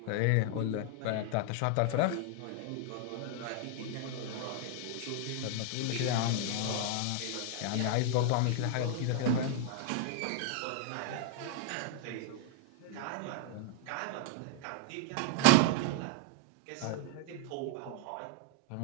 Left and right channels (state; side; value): different; both; correlation 0.00